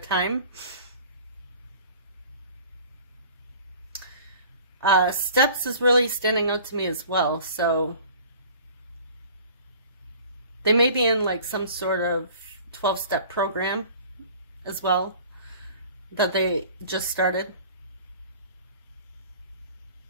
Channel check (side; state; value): both; inverted; correlation -0.47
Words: Steps is really standing out to me as well. So they may be in like some sort of 12-step program as well that they just started.